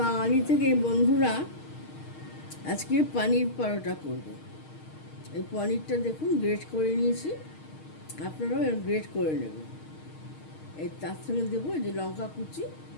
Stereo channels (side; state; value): right; late; 6.4 ms